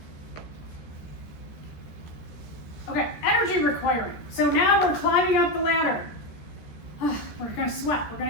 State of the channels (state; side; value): late; right; 13 ms